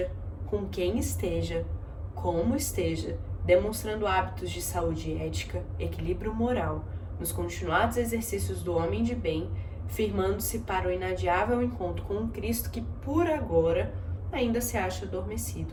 com quem esteja, como esteja, demonstrando hábitos de saúde ética, equilíbrio moral, nos continuados exercícios do homem de bem, firmando-se para o inadiável encontro com um Cristo que, por agora, ainda se acha adormecido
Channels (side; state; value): both; identical; correlation 1.00